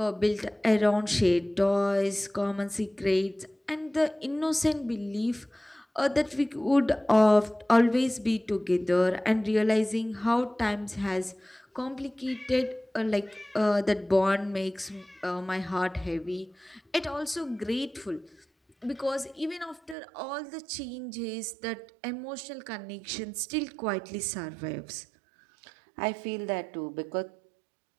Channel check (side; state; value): left; drops out; at 20.0 s